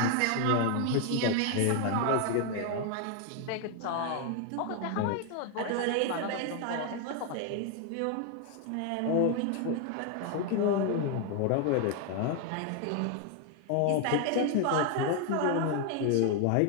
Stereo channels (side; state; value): both; different; correlation 0.01